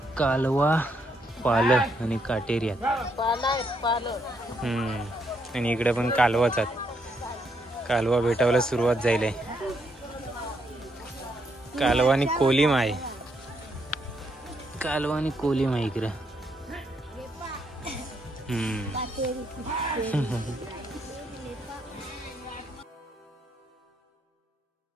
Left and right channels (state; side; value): normal; both; correlation 0.76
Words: कालवा पाल आणि काटेरी आहेत. आणि इकडे पण कालवाच आहेत. कालवा भेटायला सुरुवात झाली. कालवा आणि कोलिम आहे. कालवा आणि कोलिम आहे इकडे.